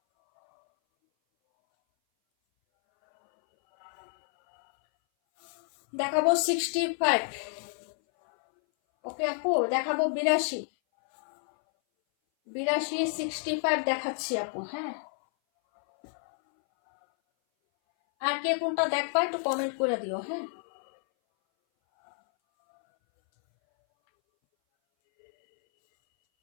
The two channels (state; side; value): silent; right; 58 dB below the other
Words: দেখাবো 65, ওকে আপু দেখাবো 82, 65 দেখাচ্ছি আপু। হ্যাঁ আর কে কোনটা দেখবা একটু কমেন্ট করে দিও। হ্যাঁ